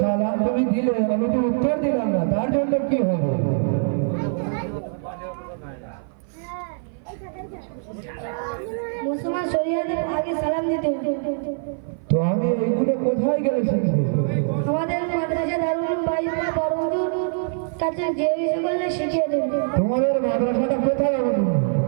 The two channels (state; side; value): silent; left; 56 dB below the other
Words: সালাম তুমি দিলে, আমি তো উত্তর দিলাম না, তার জন্য কি হবে? মুসলমান শরিয়াতে আগে সালাম দিতে হতো। তো আমি এইগুলো কোথায় গেলে শিখবো? আমাদের মাদ্রাসা দারুল বাইরা বড়হুজুর কাছে যে বিষয় করলে শিখিয়ে দেবে। তোমাদের মাদ্রাসাটা কোথায় হবে?